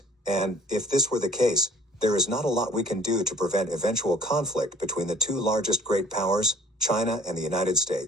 and, if this were the case, there is not a lot we can do to prevent eventual conflict between the two largest great powers, China and the United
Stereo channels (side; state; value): both; normal; correlation 0.53